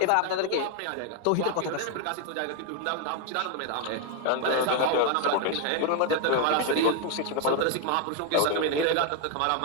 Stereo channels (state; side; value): different; both; correlation 0.01